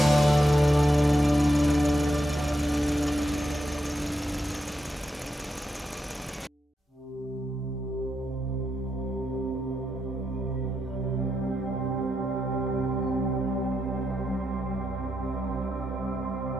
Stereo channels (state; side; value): normal; both; correlation 0.84